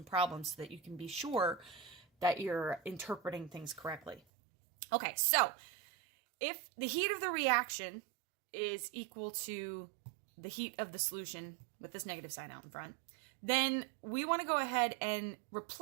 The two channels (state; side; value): drops out; left; at 4.2 s